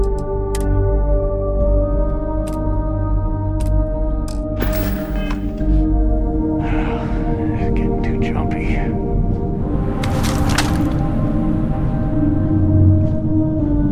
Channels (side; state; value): both; identical; correlation 1.00